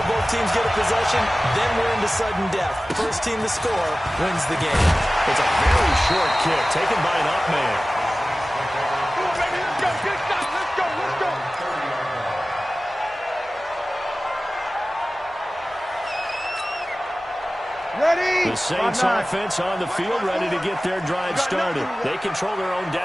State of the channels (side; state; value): both; normal; correlation 0.97